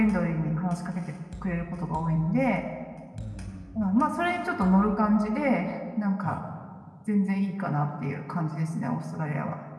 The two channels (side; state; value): both; identical; correlation 1.00